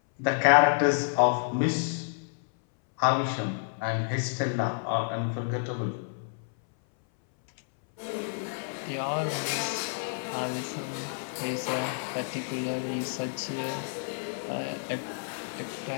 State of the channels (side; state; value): right; silent; 58 dB below the other